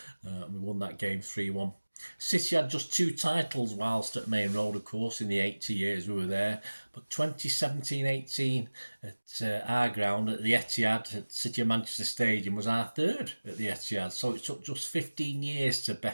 We won that game 3-1. City had just 2 titles whilst at Maine Road, of course, in the 80 years we were there. But 2017-18 at our ground at the Etihad at City of Manchester Stadium was our 3rd at the Etihad. So it took just 15 years to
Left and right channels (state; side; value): inverted; both; correlation -1.00